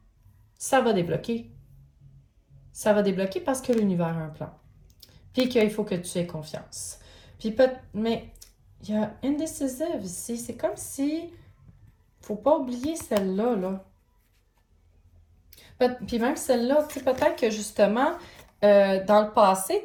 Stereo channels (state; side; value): identical; both; correlation 1.00